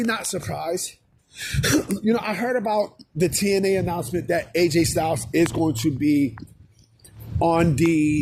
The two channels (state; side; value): identical; both; correlation 1.00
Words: not surprised. I heard about the TNA announcement that AJ Styles is going to be on